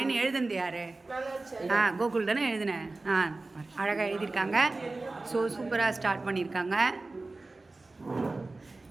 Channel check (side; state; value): left; quieter; 3.3 dB